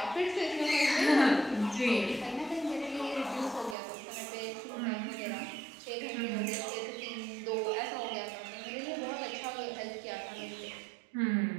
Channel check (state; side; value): drops out; left; at 3.8 s